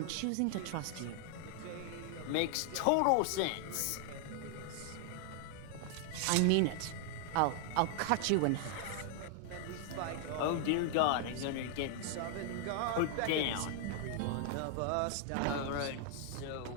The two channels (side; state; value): both; different; correlation 0.00